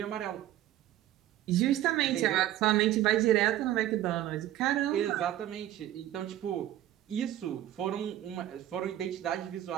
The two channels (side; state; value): left; quieter; 13.2 dB